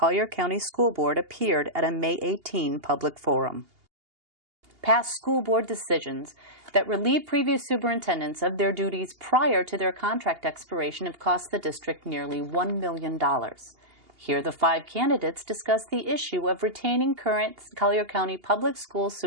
County School Board appeared at a May 18 public forum. Past school board decisions that relieve previous superintendents of their duties prior to their contract expiration have cost the district nearly $1 million. Here, the 5 candidates discuss the issue of retaining current Collier County Public Schools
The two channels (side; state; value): left; late; 2.8 ms